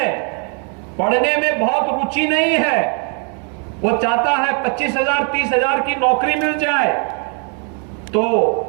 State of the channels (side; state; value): left; quieter; 39.1 dB